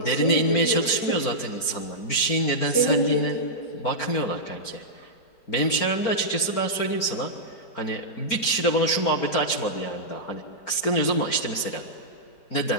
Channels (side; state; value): right; late; 4.4 ms